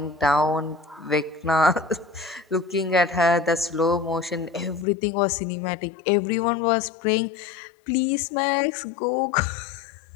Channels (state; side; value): drops out; right; at 4.9 s